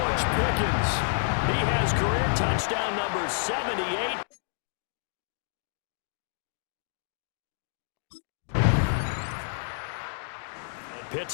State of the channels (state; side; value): silent; right; digital silence